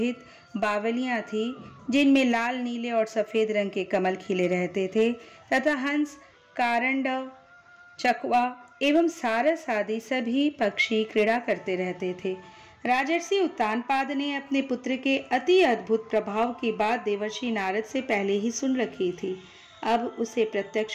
बावलियां थी, जिनमें लाल, नीले और सफेद रंग के कमल खिले रहते थे तथा हंस, कारंडव, चकवा एवं सारस आदि सभी पक्षी क्रीड़ा करते रहते थे। राजर्षि उत्तानपाद ने अपने पुत्र के अति अद्भुत प्रभाव की बात देवर्षि नारद से पहले ही सुन रखी थी। अब उसे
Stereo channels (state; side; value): identical; both; correlation 1.00